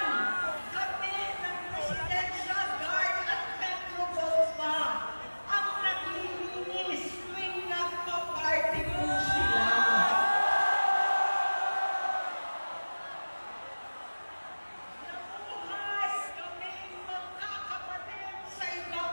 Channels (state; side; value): inverted; both; correlation -1.00